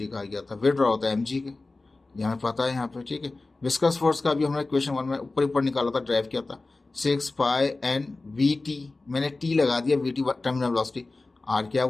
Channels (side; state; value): right; quieter; 3.3 dB